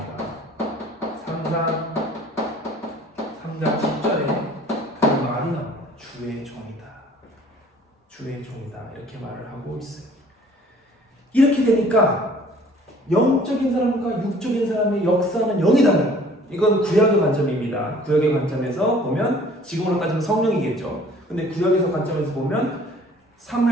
3장 10절에 그 말이 나옵니다. 주의 종이다. 주의 종이다. 이렇게 말을 하고 있어요. 이렇게 되니까 영적인 사람과 육적인 사람의 역사는 영이 달라요. 이건 구약의 관점입니다. 구약의 관점에서 보면 지금으로 따지면 성령이겠죠. 근데 구약에서 관점에서 보면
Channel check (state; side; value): normal; both; correlation 0.53